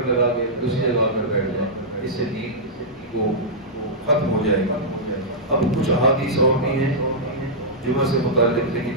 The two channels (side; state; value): both; normal; correlation -0.12